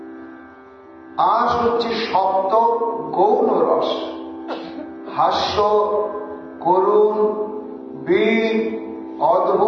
আস হচ্ছে সপ্ত গৌণ রস, হাস্য, করুণ, বীর,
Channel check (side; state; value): both; identical; correlation 1.00